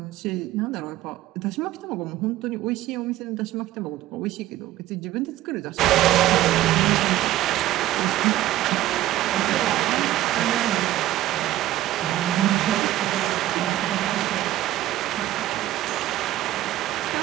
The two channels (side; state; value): left; quieter; 14.6 dB